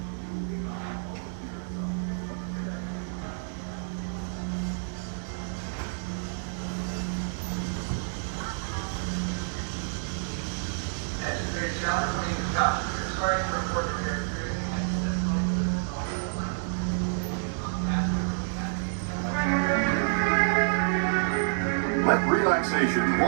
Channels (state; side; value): silent; left; digital silence